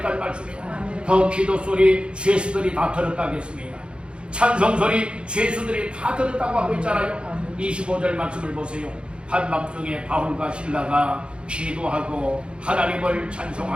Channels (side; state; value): left; late; 0.056 ms